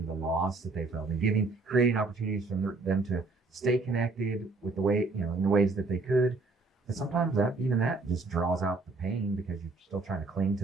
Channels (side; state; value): left; quieter; 3.7 dB